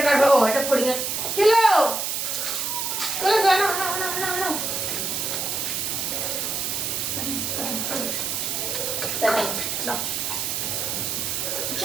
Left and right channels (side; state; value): right; noise; hiss, 1 dB below the sound